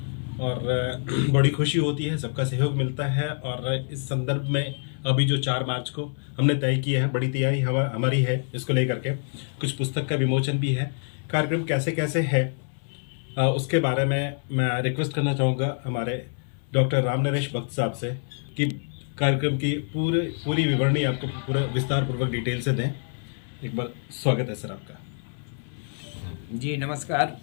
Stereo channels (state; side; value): silent; right; 59 dB below the other